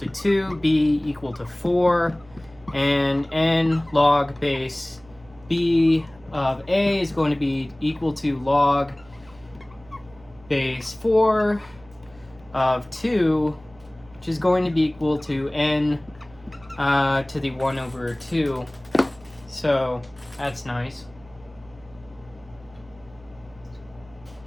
2, b equal to 4, and n log base b of a is going to be equal to log base 4 of 2, which is going to be equal to n to the 1 over 2. So that's nice.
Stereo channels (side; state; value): right; noise; hum, 25 dB below the sound